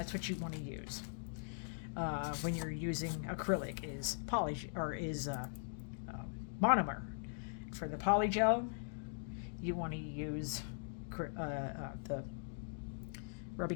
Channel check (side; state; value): right; silent; digital silence